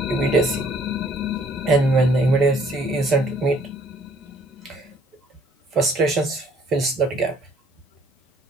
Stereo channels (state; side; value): normal; both; correlation 0.61